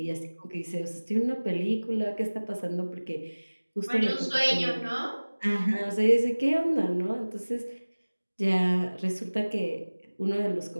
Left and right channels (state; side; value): inverted; both; correlation -1.00